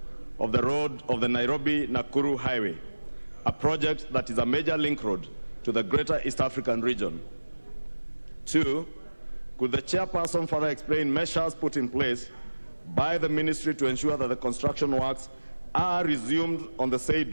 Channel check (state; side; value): inverted; both; correlation -1.00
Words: of the road of the Nairobi-Nakuru Highway, a project that is a major link road to the greater East African region? 2, could the chairperson further explain measures put in place by the ministry to ensure that the construction works are resumed on the